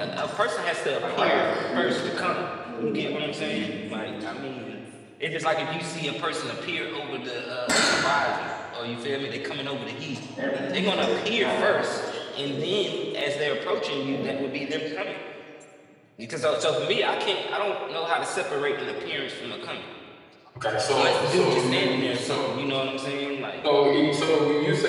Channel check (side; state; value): both; identical; correlation 1.00